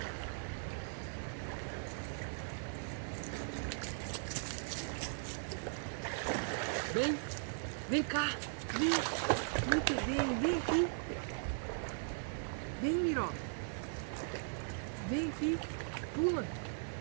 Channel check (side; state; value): left; silent; digital silence